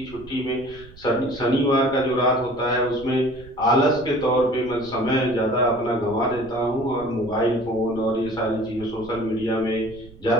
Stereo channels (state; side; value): noise; right; rumble, 20 dB below the sound